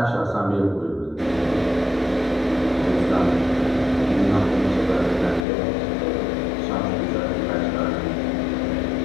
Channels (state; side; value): drops out; right; at 5.5 s